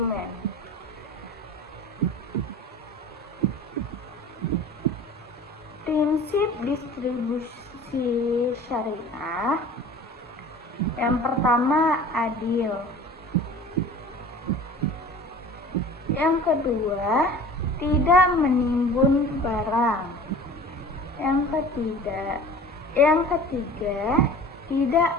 Prinsip distribusi syariah yang pertama adil. Yang kedua, tidak menimbun barang. Yang ketiga, tidak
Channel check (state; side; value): normal; both; correlation 0.42